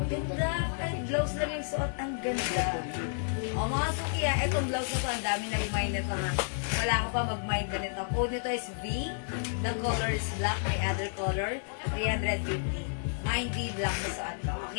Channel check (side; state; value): right; silent; digital silence